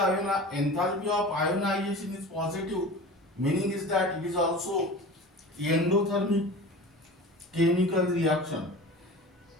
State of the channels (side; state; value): both; normal; correlation 0.36